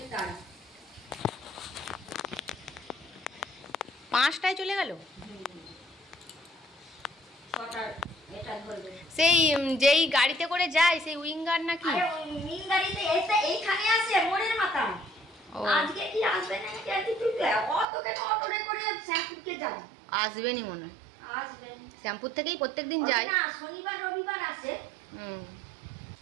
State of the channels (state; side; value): drops out; left; at 17.9 s